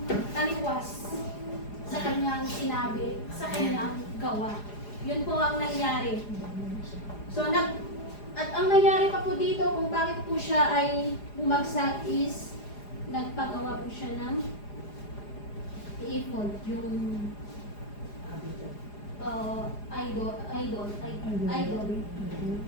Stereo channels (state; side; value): late; right; 4.9 ms